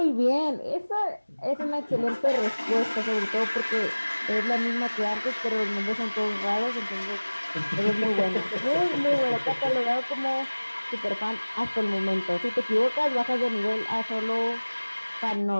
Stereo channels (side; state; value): both; inverted; correlation -1.00